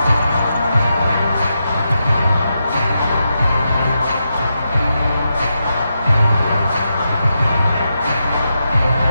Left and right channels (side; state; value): both; inverted; correlation -0.86